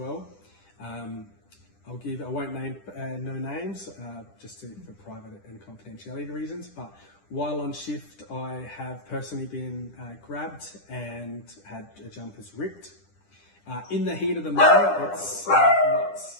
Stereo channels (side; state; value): right; late; 10 ms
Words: I won't name no names, just for private and confidentiality reasons, but while on shift I have personally been grabbed and had jumpers ripped. In the heat of the moment, it's